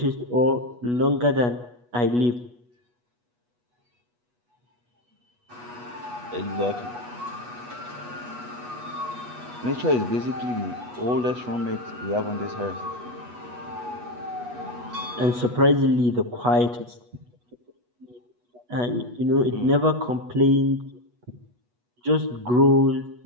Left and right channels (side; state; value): left; late; 8.2 ms